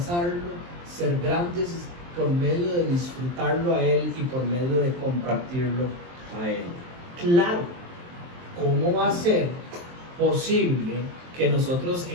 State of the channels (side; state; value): left; late; 23 ms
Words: ser grandes por medio de disfrutarlo a Él y por medio de compartirlo a Él. Claro, ¿cómo va a ser posible que nosotros